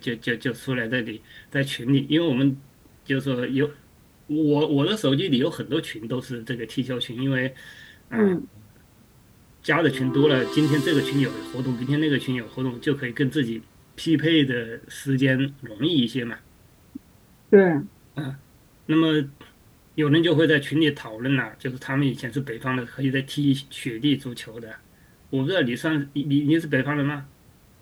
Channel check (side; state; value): both; identical; correlation 1.00